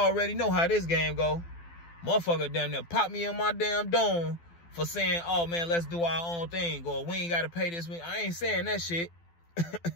know how this game go. Motherfucker damn near pop me in my damn dome for saying, oh, man, let's do our own thing. Or we ain't got to pay this. I ain't saying that shit.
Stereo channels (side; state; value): right; late; 12 ms